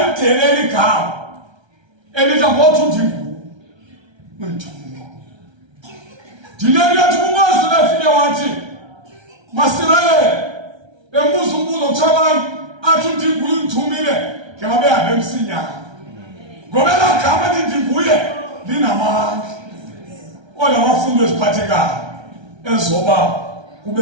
igama elithi ngothi ndinguye undithumile. Dileli yathi uMoses efike wathi Masirayeli embuza umbuzo kuchabani athi ndinguye undithumile ke babehambe emsinyana. Ngoba la gama lithi ndinguye linamandla. Ola wafundo eziphathekayo ezoba kube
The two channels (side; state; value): left; late; 1.3 ms